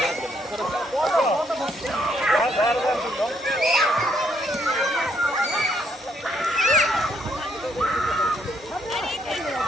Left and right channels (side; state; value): both; normal; correlation 0.71